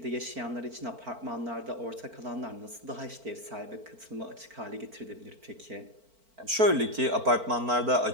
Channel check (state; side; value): late; left; 4.5 ms